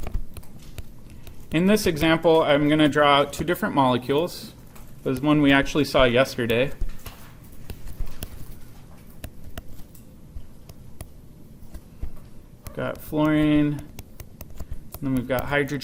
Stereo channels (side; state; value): both; identical; correlation 1.00